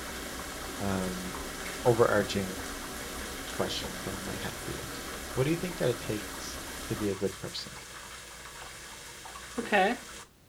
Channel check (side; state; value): both; identical; correlation 1.00